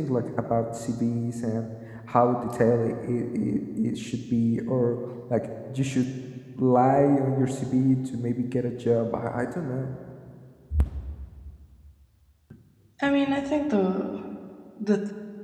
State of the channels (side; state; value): both; identical; correlation 1.00